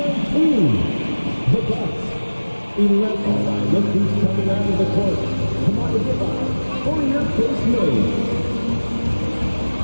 The Bucks, 11. Look who's coming out of the court. Come on, goodbye. For your first move.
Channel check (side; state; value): both; inverted; correlation -1.00